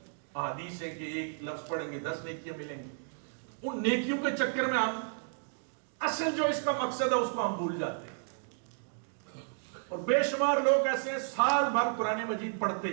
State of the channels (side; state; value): left; silent; digital silence